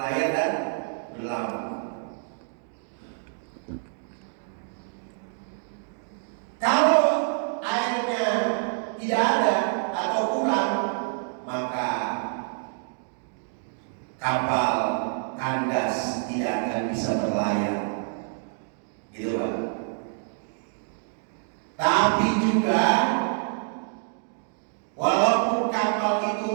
dan berlabuh. Kalau airnya tidak ada atau kurang, maka kapal kandas tidak akan bisa berlayar, gitu Pak. Tapi juga walaupun kapal itu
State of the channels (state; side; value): silent; left; 60 dB below the other